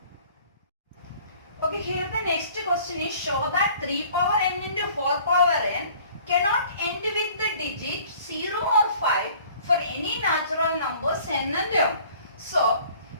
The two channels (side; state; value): both; inverted; correlation -0.52